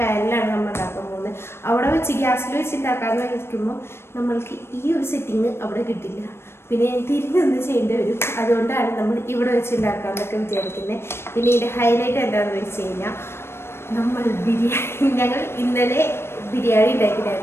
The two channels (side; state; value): right; late; 0.12 ms